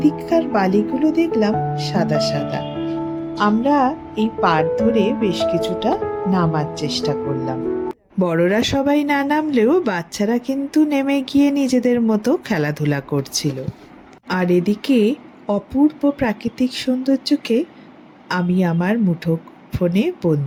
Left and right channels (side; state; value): both; identical; correlation 1.00